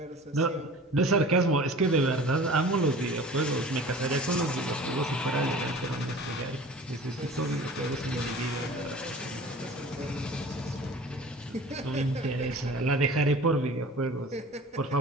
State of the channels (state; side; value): normal; both; correlation 0.42